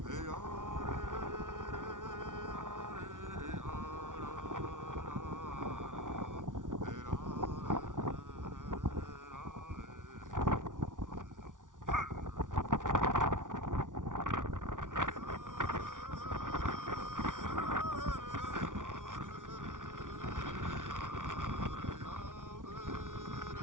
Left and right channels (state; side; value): late; left; 0.88 ms